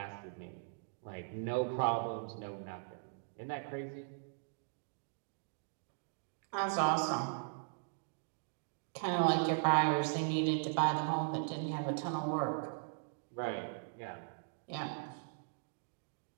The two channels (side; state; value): left; silent; digital silence